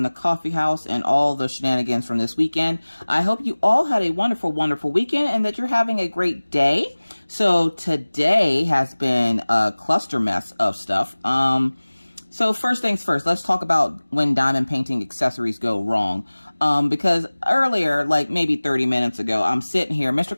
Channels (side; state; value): both; inverted; correlation -1.00